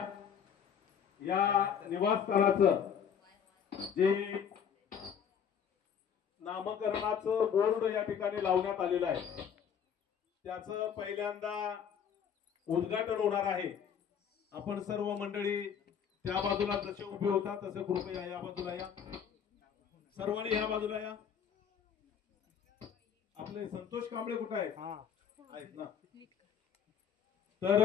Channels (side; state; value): right; quieter; 7.8 dB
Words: या निवासस्थानाचं जे नामकरणाचं बोर्ड या ठिकाणी लावण्यात आलेलं आहे त्याचं पहिल्यांदा उद्घाटन होणार आहे. आपण सर्व मंडळी त्या बाजूला जसे उभे होता तसे कृपया या बाजूला या. सर्वांनी या बाजूला या. आपले संतोष कांबळे कुठे आहेत ना? तर